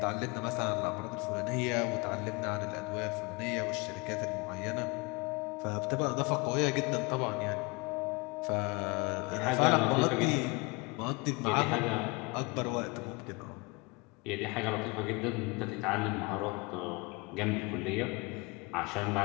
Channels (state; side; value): quieter; right; 27.5 dB